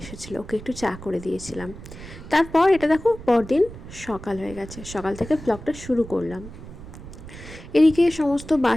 এসেছিলো, ওকে একটু চা করে দিয়েছিলাম। তারপর এটা দেখো, পরদিন সকাল হয়ে গেছে, সকাল থেকে ব্লগটা শুরু করলাম। এদিকে সমস্ত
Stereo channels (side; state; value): right; noise; rumble, 14 dB below the sound